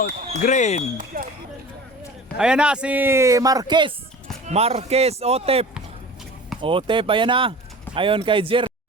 Green. Ayan na si Marquez. Marquez Otep. Otep, ayan na. Ayon kay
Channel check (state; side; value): normal; both; correlation 0.39